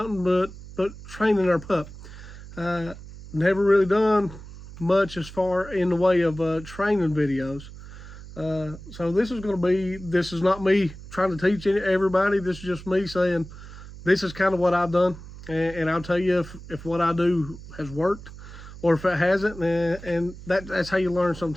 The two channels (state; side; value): noise; right; hum, 15 dB below the sound